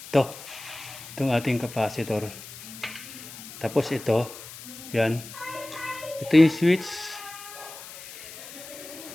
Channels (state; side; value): noise; left; hiss, 14 dB below the sound